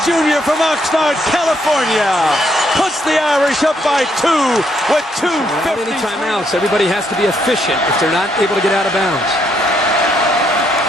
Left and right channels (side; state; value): both; normal; correlation 0.73